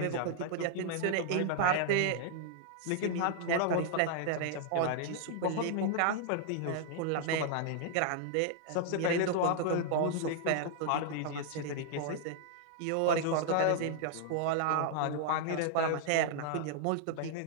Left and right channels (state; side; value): different; both; correlation 0.00